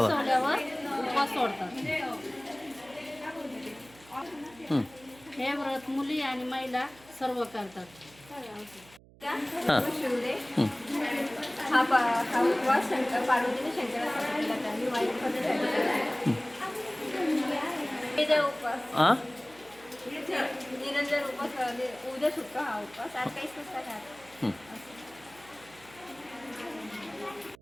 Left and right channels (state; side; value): noise; right; hum, 24 dB below the sound